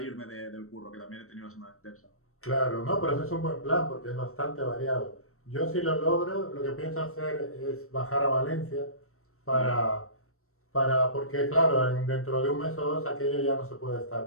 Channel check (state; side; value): late; right; 0.63 ms